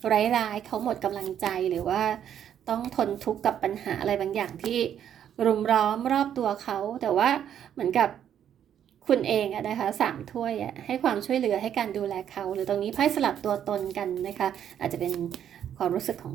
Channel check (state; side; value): quieter; left; 9.6 dB